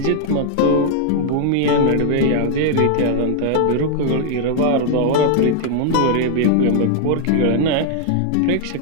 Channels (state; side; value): different; both; correlation -0.01